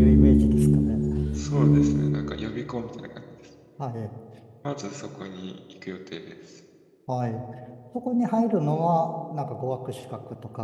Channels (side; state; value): both; identical; correlation 1.00